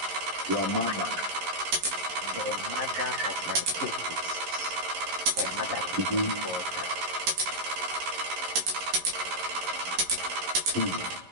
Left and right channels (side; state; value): left; late; 11 ms